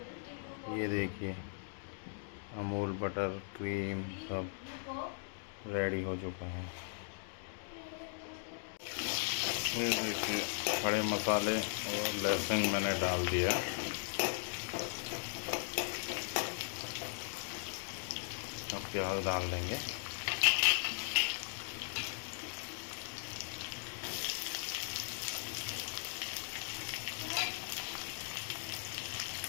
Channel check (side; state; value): right; silent; digital silence